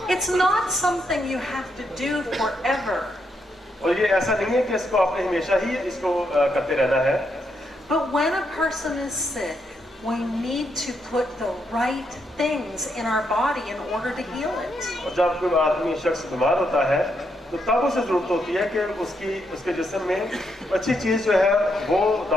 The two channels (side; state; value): both; normal; correlation 0.79